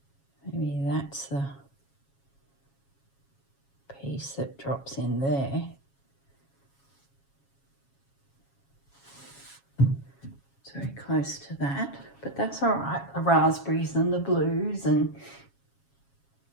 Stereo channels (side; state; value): right; late; 7.3 ms